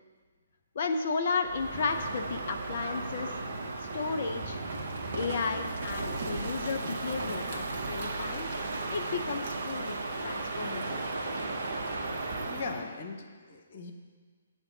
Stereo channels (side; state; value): both; inverted; correlation -0.71